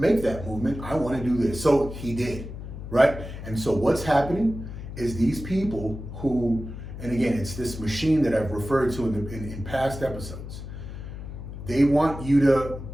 make that movement. I want to do this. So he did, right? And so what's happening is these people who, and again, it's this machine that I've referred to in past episodes. They want you to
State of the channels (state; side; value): noise; left; hum, 10 dB below the sound